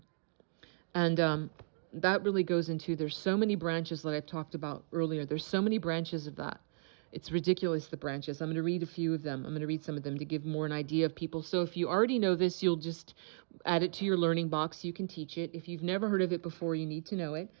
And that really goes into, there's so many branches that I've talked about earlier. There's so many branches of that. It's ridiculous, the branches. I'm going to read a few of them. I'm going to read some of them to give more an idea of people. So if you already know this, you'll just add it to your learning box. You can teach it. If you've never heard of it before, you need to know it.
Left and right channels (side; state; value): left; silent; digital silence